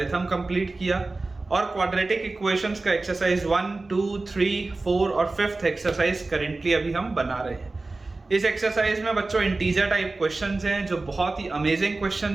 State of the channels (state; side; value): quieter; left; 3.3 dB